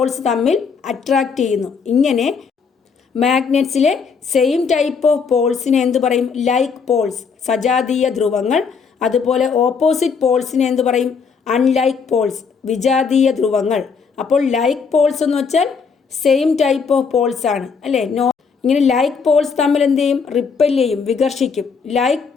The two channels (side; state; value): right; quieter; 5.6 dB